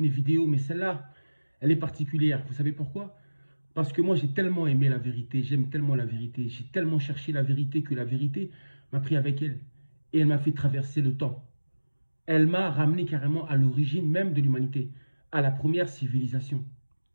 mes vidéos, mais celle-là, elle est particulière. Vous savez pourquoi? Parce que moi, j'ai tellement aimé la vérité, j'aime tellement la vérité, j'ai tellement cherché la vérité que la vérité m'a pris avec elle. Et elle m'a fait traverser le temps. Elle m'a ramené carrément à l'origine même de l'humanité, à la première civilisation.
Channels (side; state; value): both; inverted; correlation -1.00